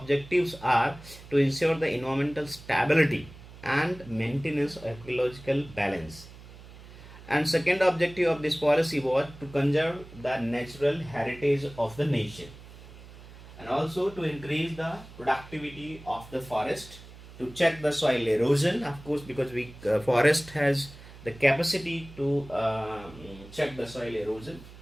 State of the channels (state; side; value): noise; right; hum, 18 dB below the sound